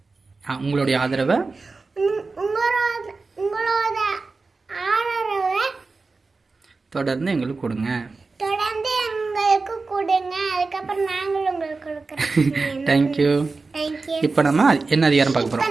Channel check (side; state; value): left; quieter; 4.0 dB